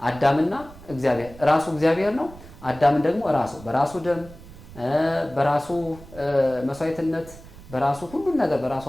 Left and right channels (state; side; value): noise; right; rumble, 19 dB below the sound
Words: አዳምና እግዚአብሔር ራሱ እግዚአብሔር ነው። አዳምን ደግሞ ራሱ በራሱ ደም በራሱ መስዋዕትነት በራሱ ሁሉን ነገር በራሱ